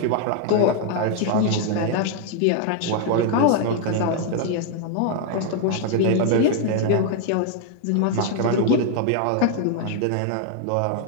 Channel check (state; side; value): different; both; correlation 0.00